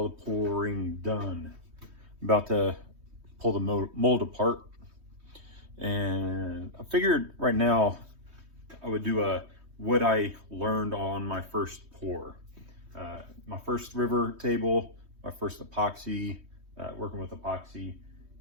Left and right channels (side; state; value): left; late; 3.2 ms